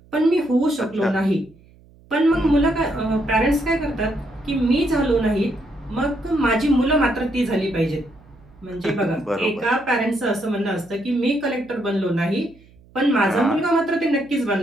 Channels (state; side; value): noise; right; hum, 27 dB below the sound